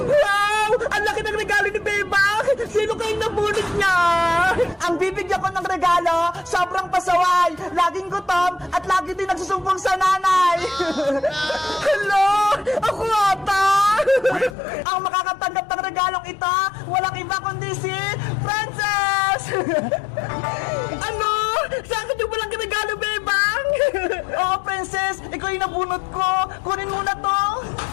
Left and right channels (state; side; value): drops out; right; at 14.6 s